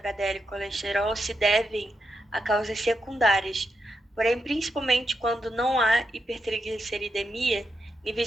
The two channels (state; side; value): normal; both; correlation 0.84